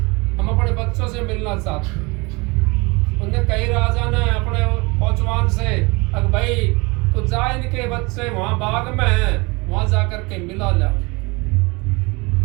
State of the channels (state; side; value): quieter; left; 26.5 dB